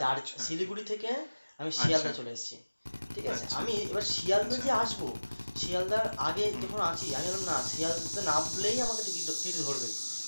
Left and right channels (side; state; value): both; inverted; correlation -1.00